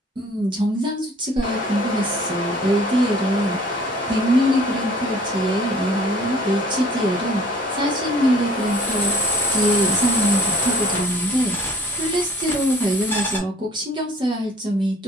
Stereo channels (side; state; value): both; normal; correlation 0.53